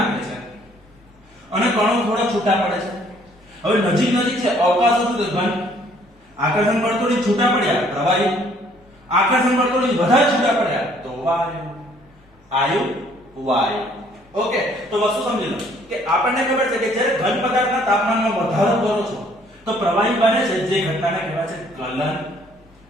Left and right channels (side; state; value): both; normal; correlation 0.61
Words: છે અને કણો થોડા છૂટા પડે છે. હવે નજીક નજીક છે, અવકાશ હતું તો ઘન, આકર્ષણ બળ તોડી છૂટા પડ્યા પ્રવાહી, આકર્ષણ બળ તોડી વધારે છૂટા પડ્યા તો વાયુ. આયુ વાયુ. ઓકે. તો વસ્તુ સમજી લો કે આપણને ખબર છે કે જ્યારે ઘન પદાર્થના તાપમાનમાં વધારો કરો છો તો પ્રવાહી બને છે, જે ઘટનાને કહેવાય છે ગલન.